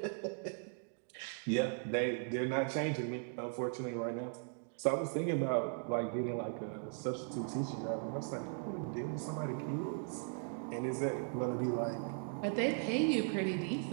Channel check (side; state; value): left; silent; 52 dB below the other